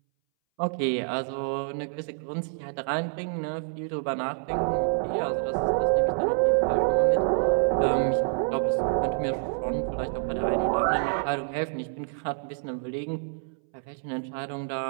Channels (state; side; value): silent; left; 60 dB below the other